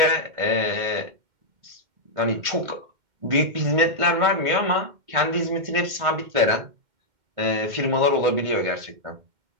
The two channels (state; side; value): late; left; 2.1 ms